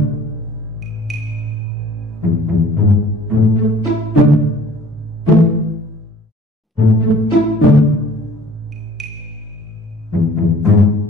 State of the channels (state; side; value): normal; both; correlation 0.51